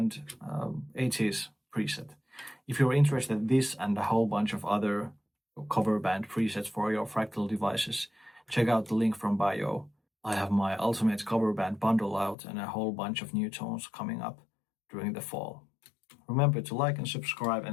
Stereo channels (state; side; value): drops out; right; at 12.4 s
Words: 80s preset. If you're interested in this and a whole bunch of other cover band presets for your Fractal devices, check out the link from bio. I have my ultimate cover band bundle out and a whole bunch of new tones coming up during the fall. Remember to like and subscribe,